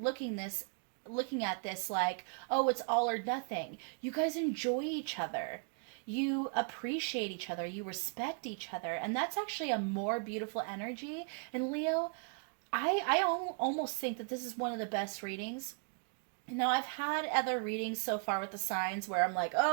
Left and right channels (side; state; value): left; quieter; 39.5 dB